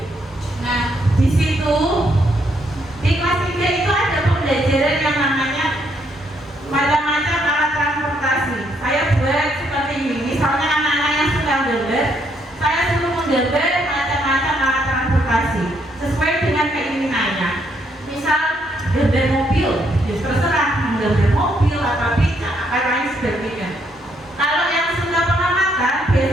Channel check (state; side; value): normal; both; correlation 0.73